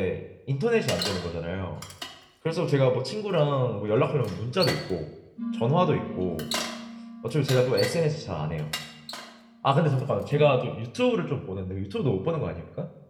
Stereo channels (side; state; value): both; identical; correlation 1.00